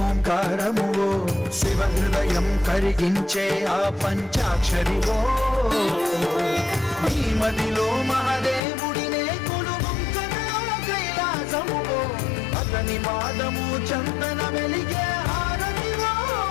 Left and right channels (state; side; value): drops out; right; at 8.6 s